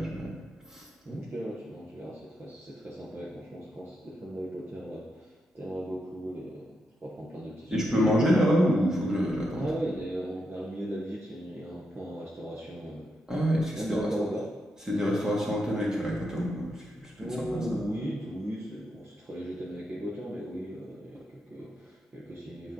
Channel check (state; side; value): normal; both; correlation 0.83